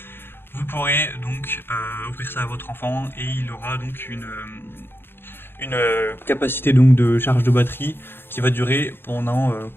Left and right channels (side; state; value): right; late; 0.10 ms